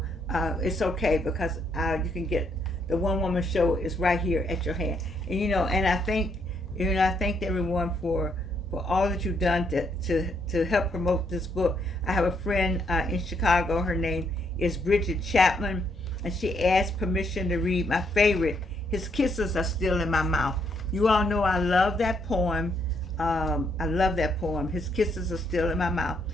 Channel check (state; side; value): normal; both; correlation 0.74